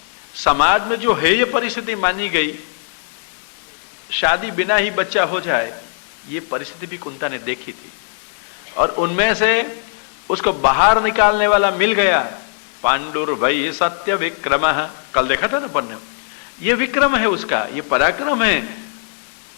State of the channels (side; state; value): right; silent; digital silence